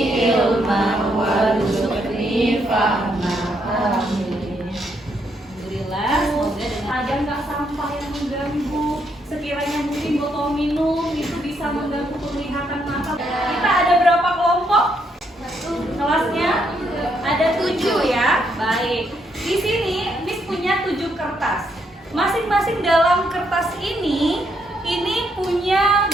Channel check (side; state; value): both; normal; correlation 0.75